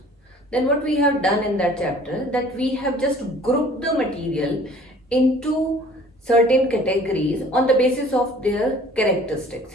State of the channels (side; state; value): both; normal; correlation 0.51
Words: Then what we have done in that chapter, that we have just grouped the material into certain categories on the basis of their characteristics.